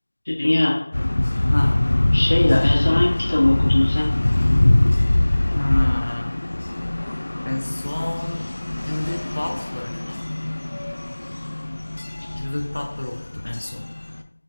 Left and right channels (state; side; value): inverted; both; correlation -1.00